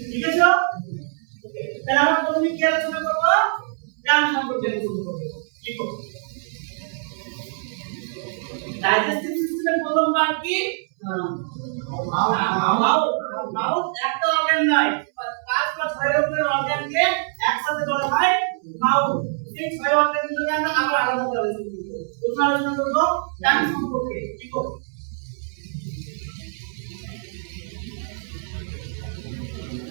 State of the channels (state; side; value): silent; left; 63 dB below the other